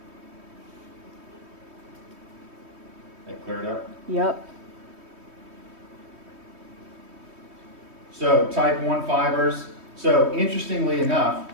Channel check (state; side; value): late; left; 3.2 ms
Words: That cleared up? Yep. So type 1 fibers. So interestingly enough,